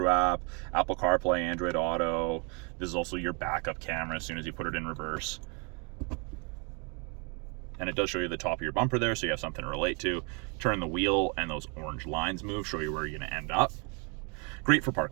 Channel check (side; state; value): left; quieter; 34.1 dB